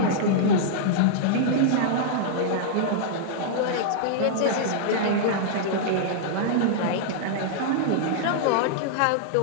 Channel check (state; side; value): different; both; correlation -0.01